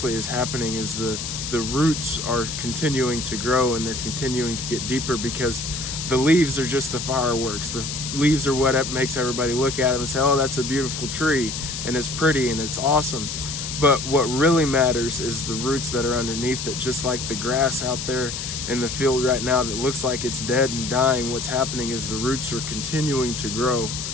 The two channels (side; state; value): left; noise; hiss, 5 dB below the sound